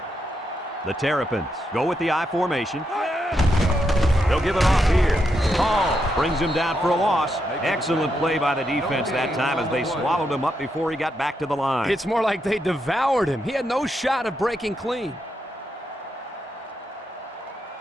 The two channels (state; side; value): normal; both; correlation 0.82